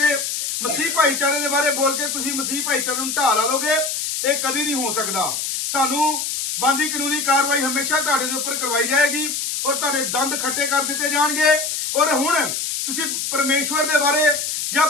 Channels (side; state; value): left; noise; hiss, 2 dB below the sound